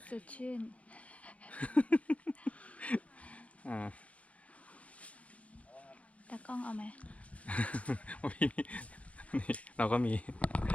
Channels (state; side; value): late; right; 0.065 ms